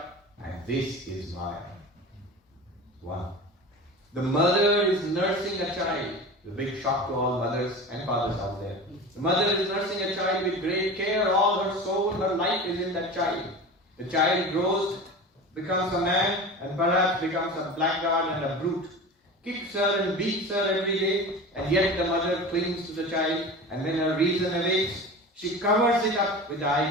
And this is Maya. 1. The mother is nursing a child. The big shock to all mothers and fathers out there. The mother is nursing a child with great care. All her soul, her life is in that child. The child grows, becomes a man, and perhaps becomes a blackguard and a brute. Kicks her and beats her every day, and yet the mother clings to the child, and when her reason awakes, she covers it up with the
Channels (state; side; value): normal; both; correlation 0.32